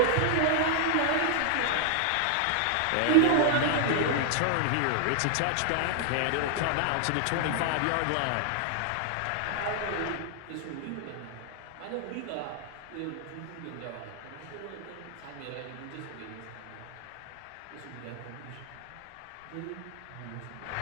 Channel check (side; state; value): both; different; correlation 0.00